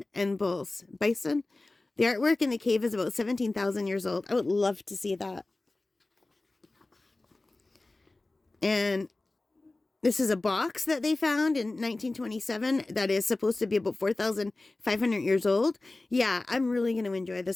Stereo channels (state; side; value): quieter; right; 3.0 dB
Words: and bulls. Bison? The artwork in the cave is about 17,000 years old. I would love to see that. And this is a box that they found in 1927 that is supposed to be about 4,500 years old. Yeah, I'm really going to enjoy